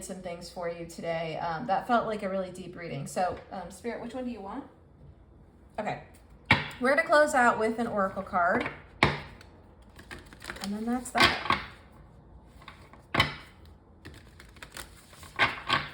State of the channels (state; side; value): identical; both; correlation 1.00